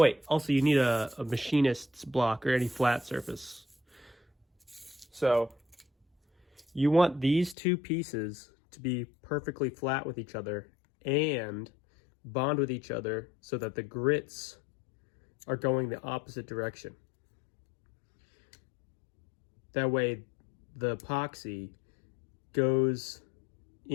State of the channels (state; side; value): drops out; right; at 7.6 s